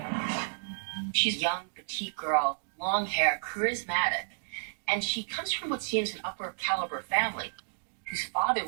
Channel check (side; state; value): left; silent; digital silence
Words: She's a young, petite girl, long hair, charismatic, and she comes from what seems an upper caliber family. whose father